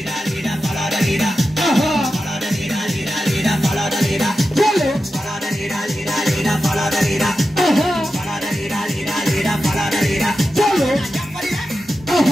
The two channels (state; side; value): normal; both; correlation 0.91